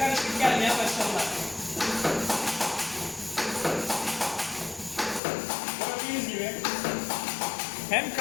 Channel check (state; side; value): drops out; right; at 5.2 s